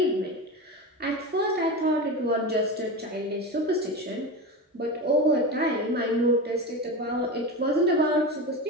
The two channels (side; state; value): both; normal; correlation 0.23